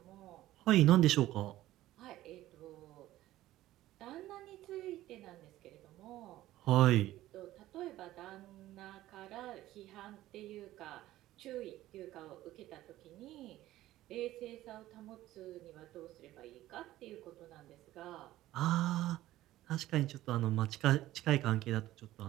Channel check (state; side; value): quieter; left; 15.1 dB